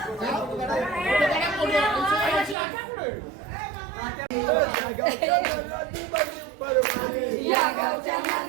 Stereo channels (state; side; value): drops out; left; at 2.6 s